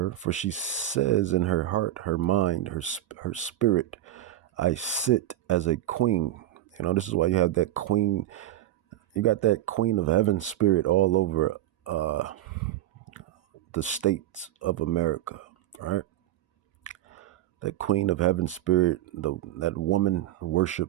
for she says in her heart, her mind, her spirit, I sit as a queen. You know, this is why you have that queen. You got that queen of heaven spirit all over the states of America, right? That queen of heaven spirit, that woman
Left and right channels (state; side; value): quieter; left; 13.3 dB